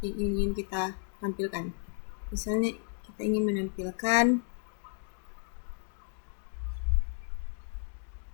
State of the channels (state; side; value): silent; right; 56 dB below the other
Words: yang ingin kita tampilkan. Misalnya kita ingin menampilkan